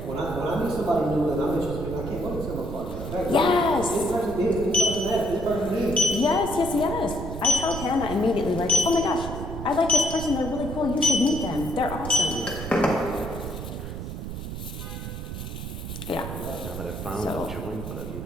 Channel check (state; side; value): noise; right; rumble, 7 dB below the sound